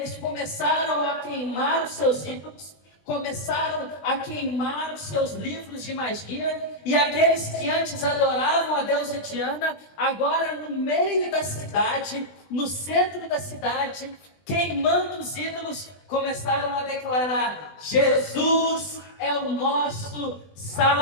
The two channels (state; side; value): late; right; 20 ms